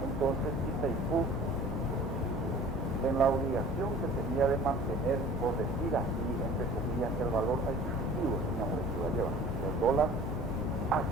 Entonces Itaipú, en la obligación que tenía de mantener, por decir así, entre comillas, el valor adquisitivo, señor, que iba a llevar el dólar, ¿a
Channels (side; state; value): both; normal; correlation 0.46